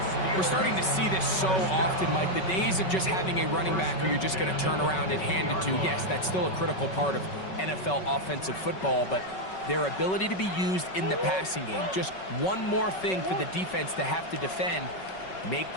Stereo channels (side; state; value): right; late; 5.3 ms